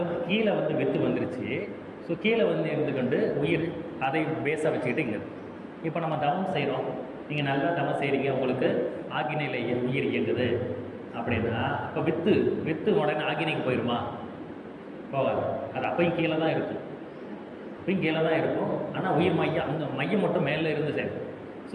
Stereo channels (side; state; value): both; identical; correlation 1.00